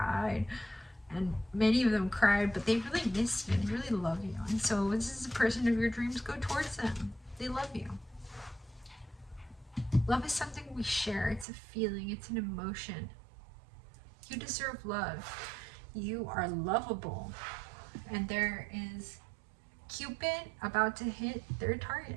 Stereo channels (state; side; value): drops out; left; at 11.5 s